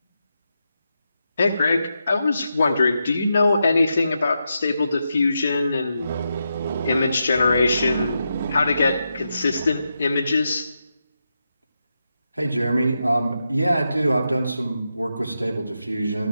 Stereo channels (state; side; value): inverted; both; correlation -0.86